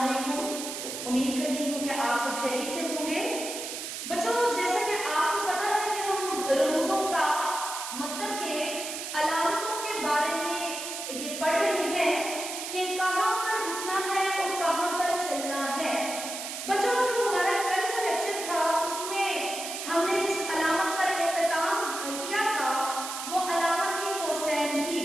उम्मीद करती हूँ कि आप सब खैरियत से होंगे। बच्चों, जैसा कि आपको पता है कि हम रमूजों का मतलब के अलामतों के बारे में ये पढ़ रहे हैं कि कहाँ पर रुकना है और कहाँ पर चलना है। बच्चों, जो हमारा कल का लेक्चर था उसमें हमने जिस अलामत पर इख्तिताम किया था वो अलामत थी कोसैन की।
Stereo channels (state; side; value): noise; right; hiss, 6 dB below the sound